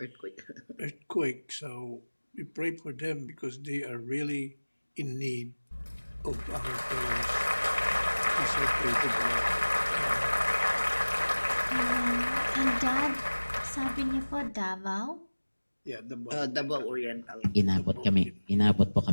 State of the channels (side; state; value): both; inverted; correlation -1.00